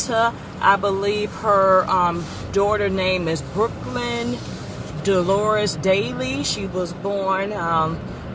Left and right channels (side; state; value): both; identical; correlation 1.00